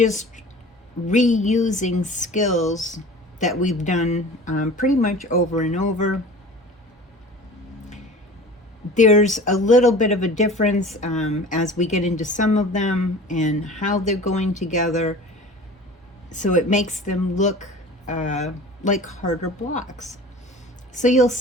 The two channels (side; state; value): both; normal; correlation 0.41